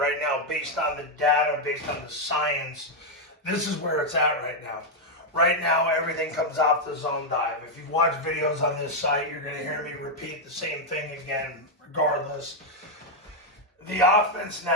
now, based on the data, based on the science. This is where it's at right now. Right now, everything comes off the zone dive. If you've watched videos on this site, you're going to hear me repeat the same thing again, regardless. The offense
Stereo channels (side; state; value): both; normal; correlation 0.00